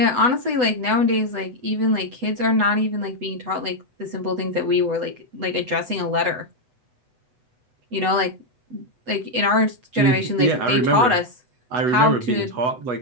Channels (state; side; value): late; left; 8.0 ms